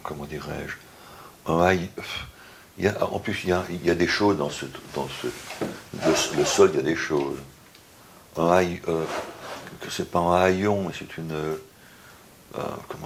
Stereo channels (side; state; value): both; identical; correlation 1.00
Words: Comment dirais-je, en plus il y a des choses le sol, il y a des choses. Que c'est pas un haillon, mais c'est une,